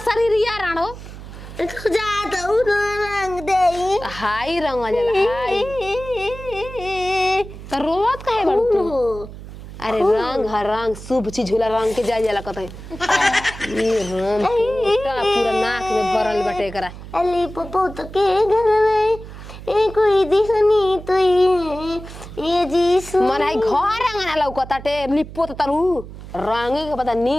शरीरिया राणो तू जा दऊ ना रंग दे हाई रंग जला हाई तो रोवत काहे बड़ू तू अरे रंग शुभ चीज होला रंग के जाय जाला कतई ये राम पूरा नाक में भरल बटे करा अली पप्पू तो के घर में कोई दिखनी तो ये जीसु मन है घर रंगना लौकताटे लिपो त तरु रंगे के पता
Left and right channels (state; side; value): noise; right; hum, 14 dB below the sound